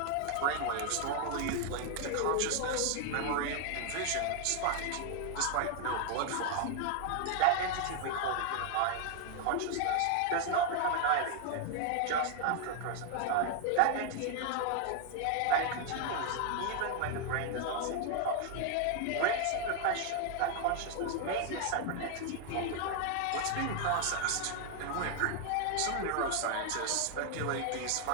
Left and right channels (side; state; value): both; different; correlation 0.00